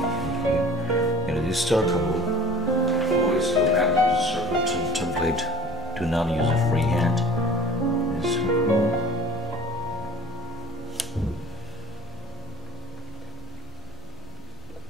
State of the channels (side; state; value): left; noise; rumble, 21 dB below the sound